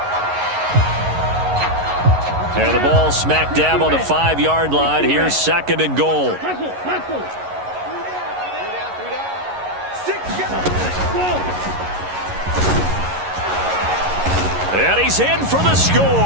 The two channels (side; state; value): left; late; 11 ms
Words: And the ball smack dab on the 5-yard line. Here's second and goal. And he's in for the